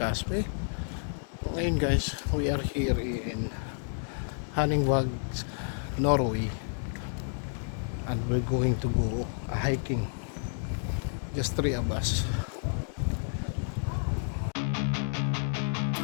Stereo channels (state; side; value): silent; right; digital silence